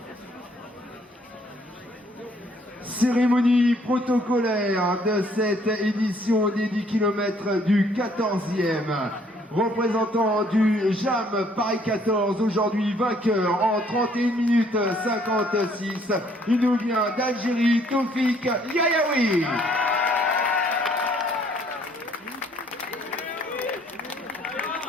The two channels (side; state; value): both; normal; correlation 0.63